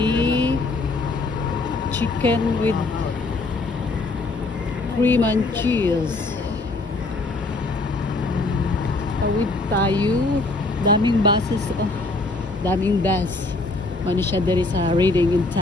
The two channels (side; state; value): right; quieter; 3.2 dB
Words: chicken with cream and cheese. Tawid tayo. Daming buses. Oh, daming bus. Mano siya diri sa Reading in